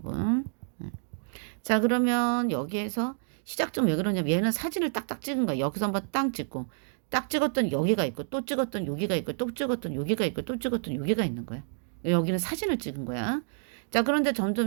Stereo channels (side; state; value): left; silent; digital silence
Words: 자, 그러면 여기에서 시작점 왜 그러냐면 얘는 사진을 딱딱 찍은 거야. 여기서 한번 딱 찍고 딱 찍었던 여기가 있고 또 찍었던 여기가 있고 또 찍었던 여기가 있고 또 찍었던 여기가 있는 거야. 여기는 사진을 찍은 거야. 자, 그런데